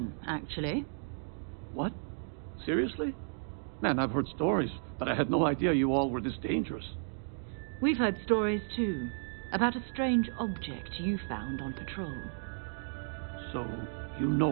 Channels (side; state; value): left; silent; digital silence